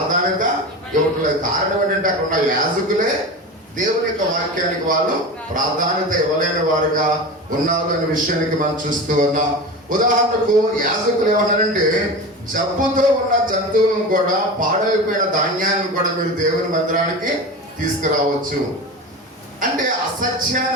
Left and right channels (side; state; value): both; normal; correlation 0.28